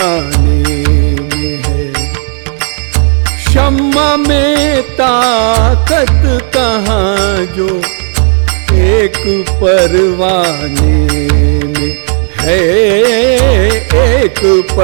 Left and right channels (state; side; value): silent; left; 55 dB below the other